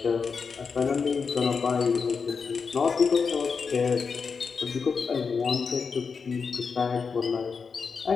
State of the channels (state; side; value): quieter; right; 5.4 dB